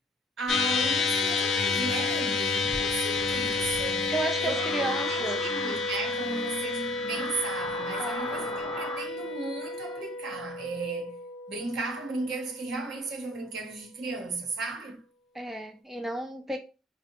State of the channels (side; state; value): both; normal; correlation 0.52